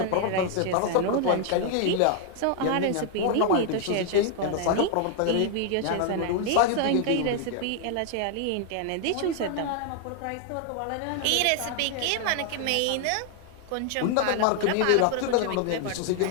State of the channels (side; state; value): both; different; correlation 0.00